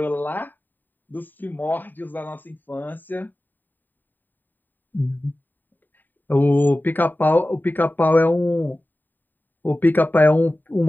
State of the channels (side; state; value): right; late; 0.090 ms